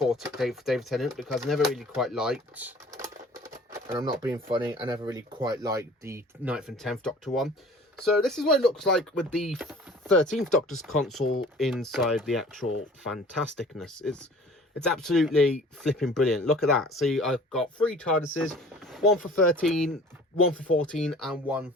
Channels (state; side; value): normal; both; correlation 0.47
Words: David Tennant, because I never really quite liked, and I'm not being funny, I never really quite liked the 9th and 10th Doctor one. So this is what it looks like with the 13th Doctor's console inside the actual fantasticness. It's absolutely flipping brilliant. Look at that. See, I've got 3 TARDISes, one for 13, one for 14, and one